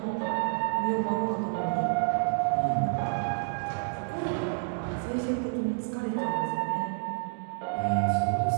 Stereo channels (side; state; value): left; silent; digital silence